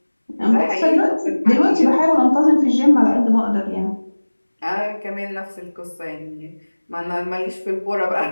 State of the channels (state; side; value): inverted; both; correlation -1.00